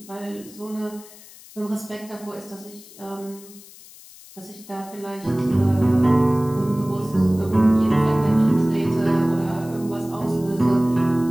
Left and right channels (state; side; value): noise; left; hiss, 20 dB below the sound